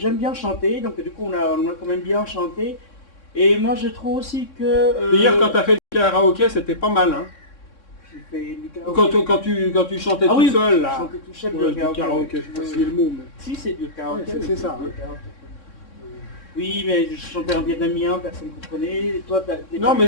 bien chanter. Donc, du coup, on a quand même bien chanté. Et moi, je trouve aussi que... Hier, quand tu as fait du karaoké, c'était pas mal. Hein. Fait du karaoké. Quand tu chantais tout seul, là. Chantais tout seul, Ouais, du karaoké. je sais pas si c'est le mot. Mais... Si, c'est du karaoké. Ouais, c'est ça. Du karaoké. Oui, mais je chantais en vietnamien, personne ne comprenait. Toi, non, mais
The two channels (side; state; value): right; late; 3.6 ms